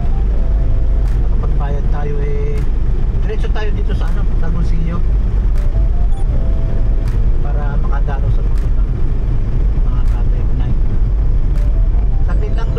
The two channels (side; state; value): both; identical; correlation 1.00